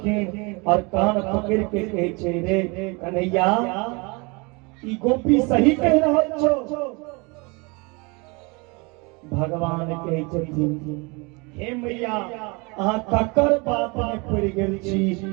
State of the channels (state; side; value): quieter; left; 28.6 dB